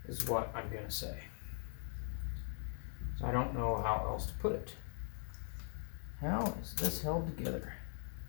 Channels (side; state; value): right; silent; digital silence